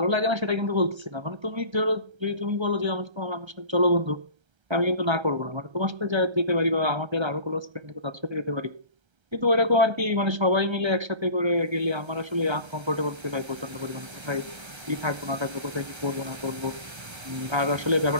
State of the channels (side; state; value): left; late; 1.3 ms